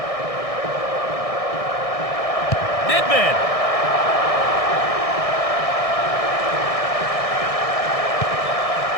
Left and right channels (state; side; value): late; right; 1.6 ms